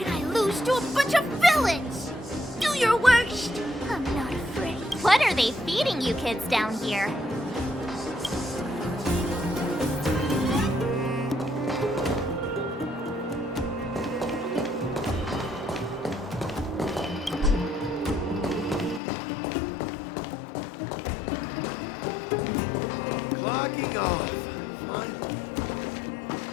I lose to a bunch of villains? Do your worst! I'm not afraid. What are they feeding you kids down here? Clocking off. Finally.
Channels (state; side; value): drops out; right; at 19.0 s